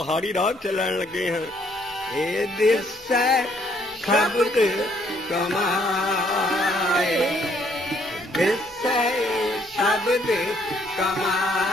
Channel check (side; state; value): both; normal; correlation 0.67